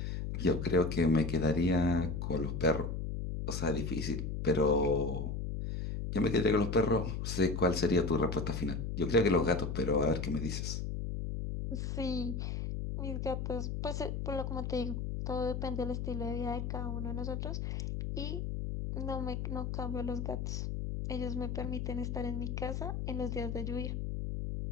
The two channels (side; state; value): left; noise; hum, 3 dB below the sound